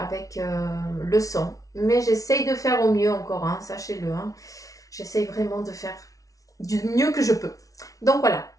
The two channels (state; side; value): late; right; 0.17 ms